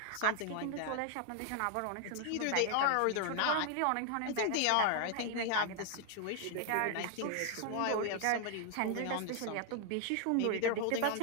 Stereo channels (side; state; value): both; different; correlation 0.00